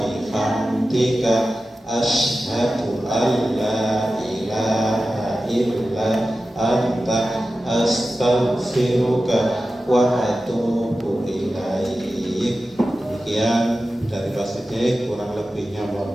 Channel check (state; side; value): normal; both; correlation 0.94